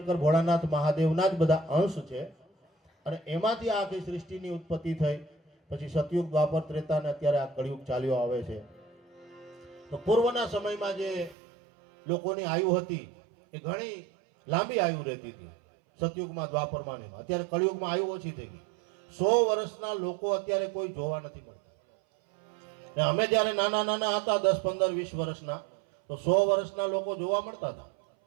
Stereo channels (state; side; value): drops out; left; at 11.4 s